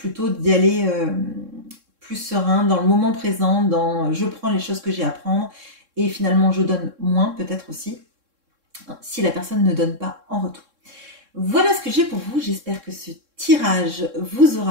d'y aller plus serein, dans le moment présent, dans je prends les choses que j'ai à prendre, et finalement je donne moins peut-être aussi, si la personne ne donne pas en retour. Voilà ce que j'ai pour vous, j'espère que ce tirage vous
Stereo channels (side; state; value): left; late; 3.7 ms